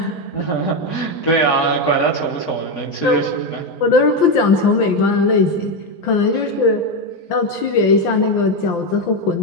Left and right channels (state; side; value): late; right; 5.8 ms